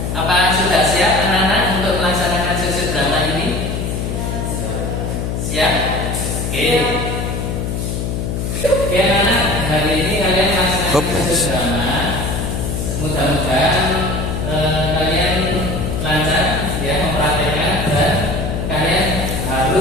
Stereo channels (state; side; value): noise; left; hum, 2 dB below the sound